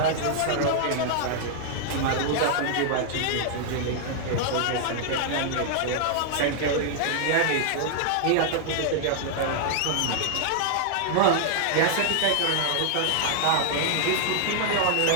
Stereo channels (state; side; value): different; both; correlation 0.00